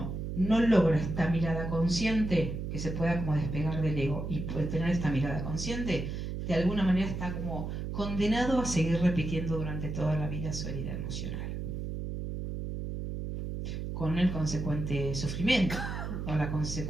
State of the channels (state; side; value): noise; right; hum, 5 dB below the sound